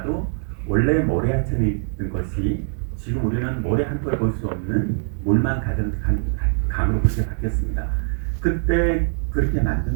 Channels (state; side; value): silent; left; 64 dB below the other